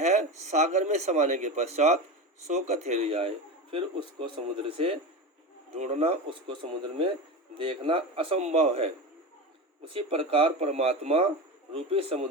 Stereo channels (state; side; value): normal; both; correlation 0.24